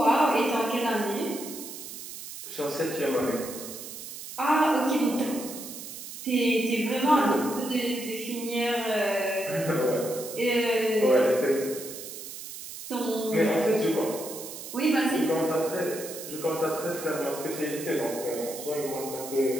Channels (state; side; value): noise; right; hiss, 11 dB below the sound